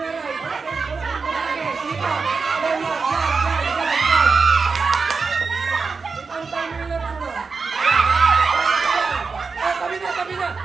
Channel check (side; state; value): left; quieter; 4.7 dB